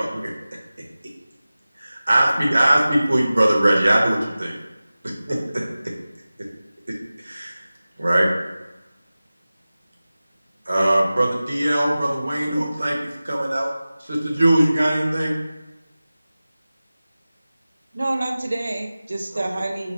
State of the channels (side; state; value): both; inverted; correlation -0.97